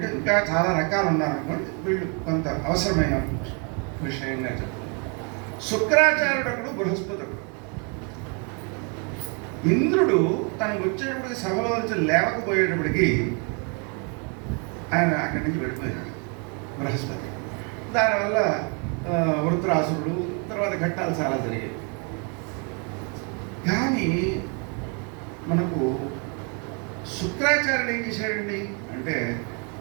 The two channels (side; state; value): left; quieter; 35.9 dB